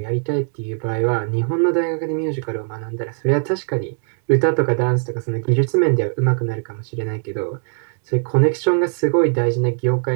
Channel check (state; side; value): silent; left; 57 dB below the other